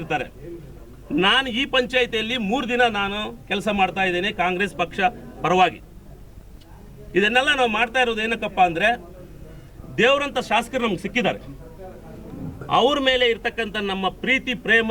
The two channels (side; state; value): both; identical; correlation 1.00